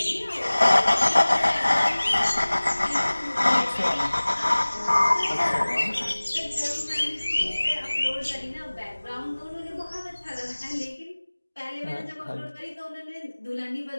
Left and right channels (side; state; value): both; inverted; correlation -1.00